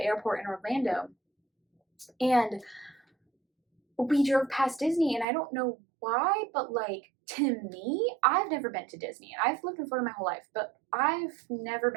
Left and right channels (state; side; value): drops out; left; at 5.2 s